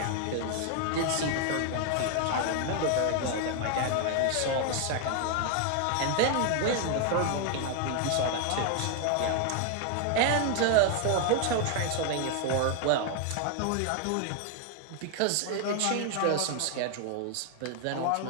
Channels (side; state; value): both; different; correlation 0.00